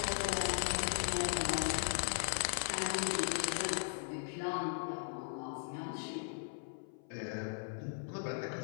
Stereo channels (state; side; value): silent; right; 52 dB below the other